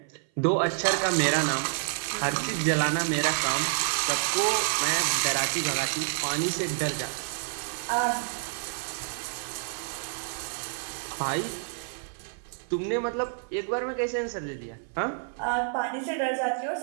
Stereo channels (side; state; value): left; silent; 57 dB below the other